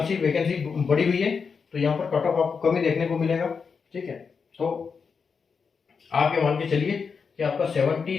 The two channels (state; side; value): quieter; right; 5.6 dB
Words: वैकेंसी बढ़ी हुई है, तो यहाँ पर कट ऑफ आपको कमी देखने को मिलेगा। ठीक है, तो आप ये मान के चलिए कि आपका